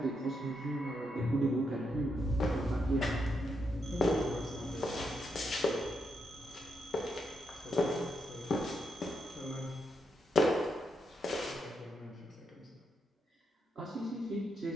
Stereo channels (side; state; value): both; normal; correlation 0.81